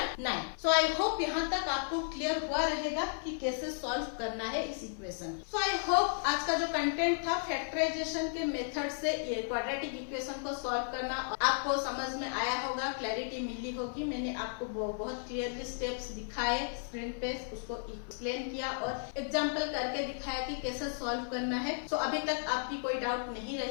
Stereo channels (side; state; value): right; silent; 55 dB below the other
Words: 9। So I hope यहाँ तक आपको क्लियर हुआ रहेगा कि कैसे सॉल्व करना है इस इक्वेशन। सो आई होप आज का जो कंटेंट था फैक्टराइजेशन के मेथड से ये क्वाड्रेटिक इक्वेशन को सॉल्व करना आपको समझ में आया होगा, क्लैरिटी मिली होगी। मैंने आपको बहुत क्लियरली स्टेप्स दिखाए स्क्रीन पे, उसको एक्सप्लेन किया और एग्जाम्पल करके दिखाया कि कैसे सॉल्व करना है। सो अभी तक आपकी कोई डाउट नहीं